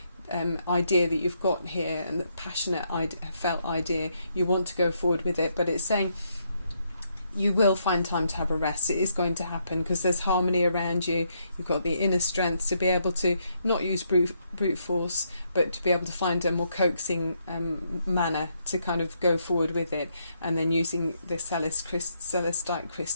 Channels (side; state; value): both; inverted; correlation -0.75